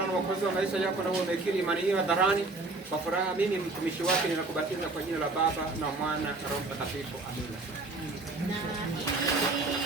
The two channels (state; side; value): quieter; left; 3.3 dB